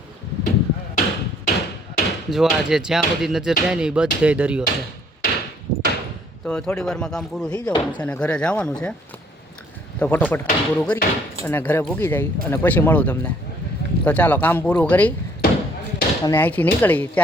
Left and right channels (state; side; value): normal; both; correlation 0.62